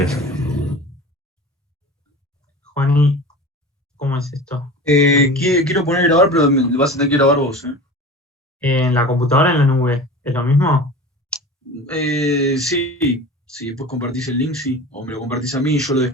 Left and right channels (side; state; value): both; normal; correlation 0.35